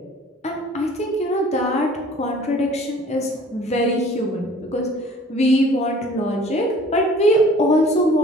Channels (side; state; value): both; normal; correlation 0.50